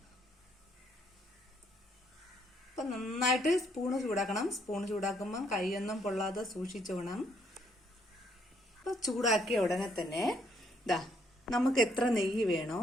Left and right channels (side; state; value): both; normal; correlation 0.70